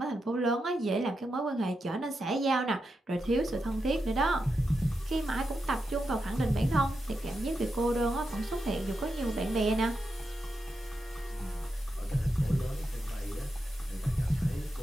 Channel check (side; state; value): both; normal; correlation 0.87